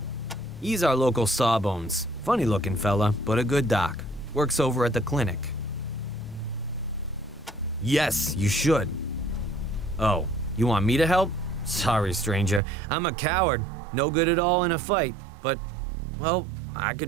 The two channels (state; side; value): drops out; left; at 12.6 s